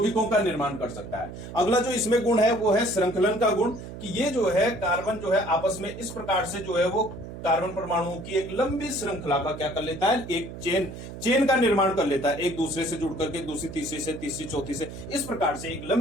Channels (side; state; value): right; noise; hum, 11 dB below the sound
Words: का निर्माण कर सकता है। अगला जो इसमें गुण है वो है श्रृंखलन का गुण, कि ये जो है कार्बन जो है आपस में इस प्रकार से जो है वो कार्बन परमाणुओं की एक लंबी श्रृंखला का क्या कर लेता है, एक चेन का निर्माण कर लेता है, एक दूसरे से जुड़ करके दूसरी तीसरी से तीसरी चौथी से इस प्रकार से एक